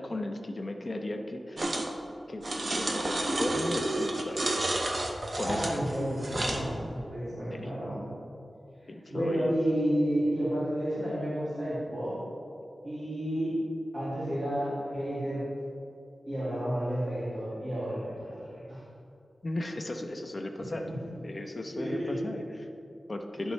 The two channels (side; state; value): both; normal; correlation 0.94